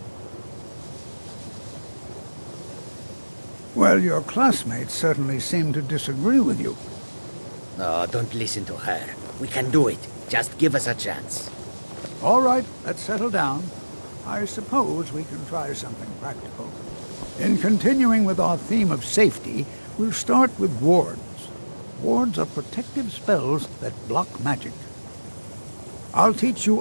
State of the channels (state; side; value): inverted; both; correlation -1.00